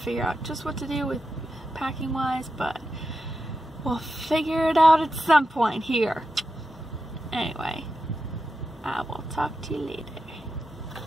out just what to do with packing wise, but we'll figure it out at some point here. Anyway, I will talk to you later.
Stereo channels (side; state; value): both; normal; correlation 0.89